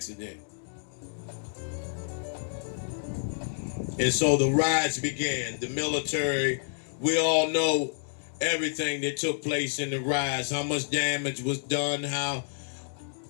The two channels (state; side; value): silent; right; digital silence